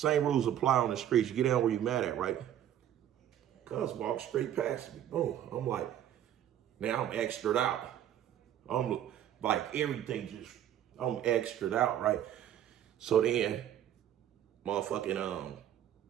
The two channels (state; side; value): quieter; left; 11.0 dB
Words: rules apply on the streets. You get down where you mad at, right? Cuz walk straight past me. Boom. I'm like, now I'm extra'd out. I'm like, everything just, I'm extra'd out, right? So then, motherfucking,